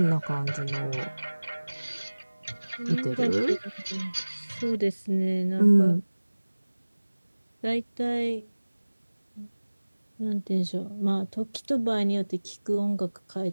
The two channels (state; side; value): inverted; both; correlation -1.00